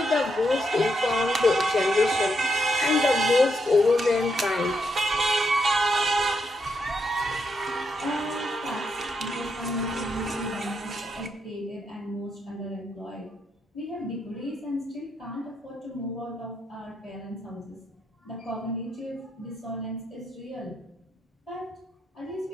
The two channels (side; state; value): both; normal; correlation 0.80